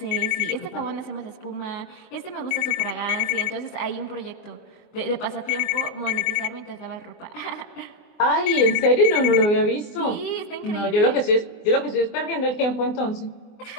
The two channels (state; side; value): late; right; 24 ms